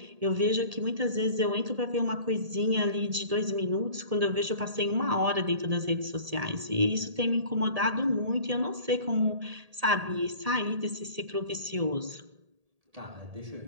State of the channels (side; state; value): left; late; 1.8 ms